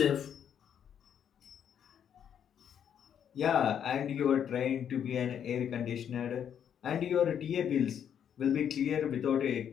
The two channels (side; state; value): right; quieter; 8.8 dB